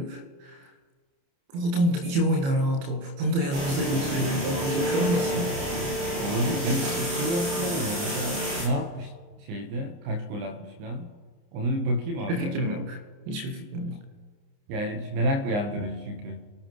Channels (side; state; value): left; late; 29 ms